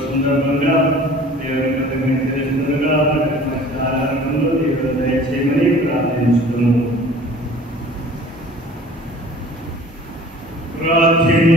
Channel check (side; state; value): both; normal; correlation 0.47